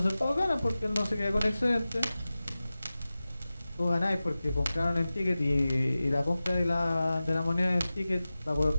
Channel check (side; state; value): both; inverted; correlation -0.96